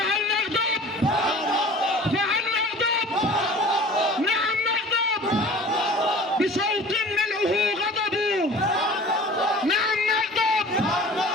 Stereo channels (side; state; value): both; normal; correlation 0.43